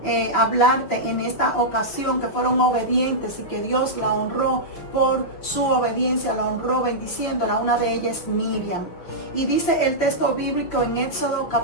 hablarte en esta ocasión, que fueron obedientes y que Dios la honró por su obediencia, la honró bendiciéndola, una de ellas es Miriam. Y dice el texto bíblico en Éxodo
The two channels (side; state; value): right; late; 5.8 ms